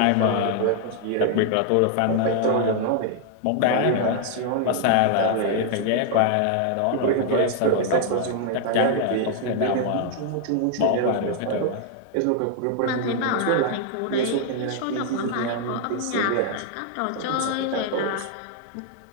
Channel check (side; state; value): both; different; correlation 0.00